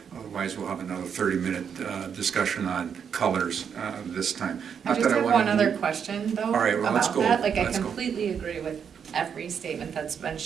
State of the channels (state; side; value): quieter; left; 7.4 dB